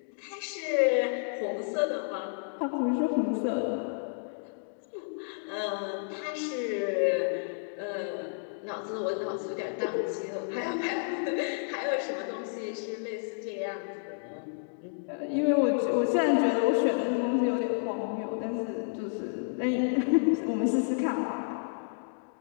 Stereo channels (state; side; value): silent; right; digital silence